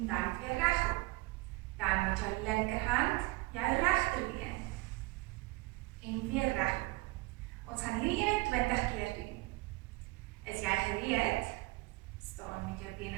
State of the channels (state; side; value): quieter; left; 22.9 dB